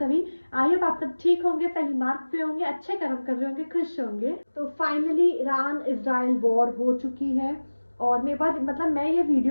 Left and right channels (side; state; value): both; inverted; correlation -1.00